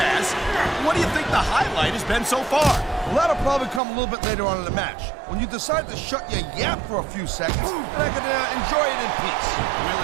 What do you think the highlight has been so far? Well, that'll probably come a little bit later on in the match, when you decide to shut your yap for a few seconds, and I can enjoy it in peace. Well,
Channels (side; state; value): left; drops out; at 3.8 s